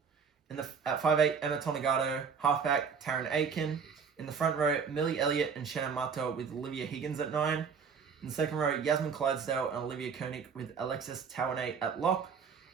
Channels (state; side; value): quieter; left; 6.2 dB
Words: At 5'8", Emma Tonegado. Halfback, Taryn Aiken. In the front row, Millie Elliott and Shannon Mato with Olivia Higgins at 9. In the second row, Yasmin Clydesdale and Olivia Koenig with Alexis Tawane at lock.